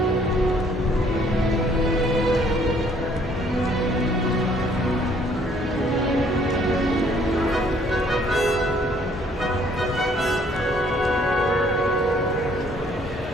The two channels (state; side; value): normal; both; correlation 0.62